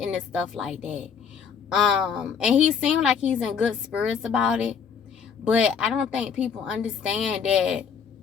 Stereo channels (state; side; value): quieter; right; 6.7 dB